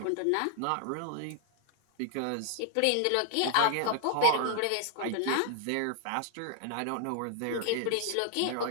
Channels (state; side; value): different; both; correlation 0.00